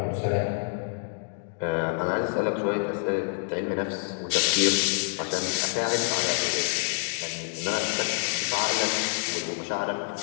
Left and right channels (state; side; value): silent; right; 60 dB below the other